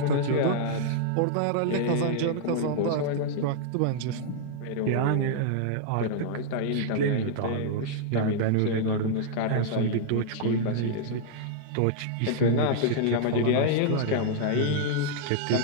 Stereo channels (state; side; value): different; both; correlation -0.01